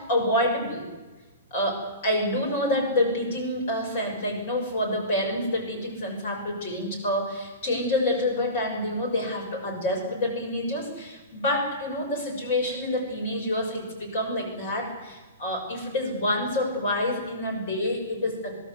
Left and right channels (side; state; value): both; inverted; correlation -0.33